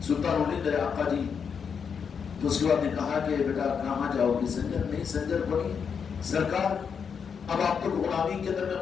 سلطان الہند آقا جی، تو اس کے بعد نے کہا کہ بیٹا کہاں جاؤ گے؟ سنجر نہیں، سنجر پڑی سرکار، اب آپ کو غلامی کے اندر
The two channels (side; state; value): right; quieter; 6.6 dB